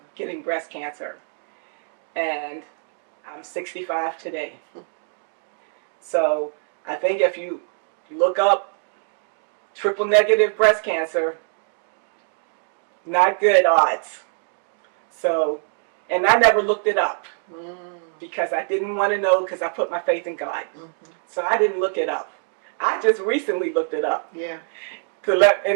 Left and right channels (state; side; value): silent; left; digital silence